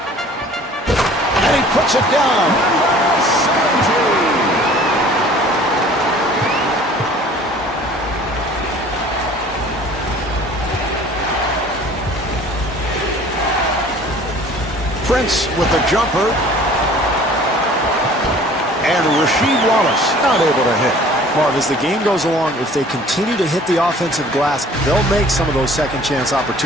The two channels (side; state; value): both; normal; correlation 0.50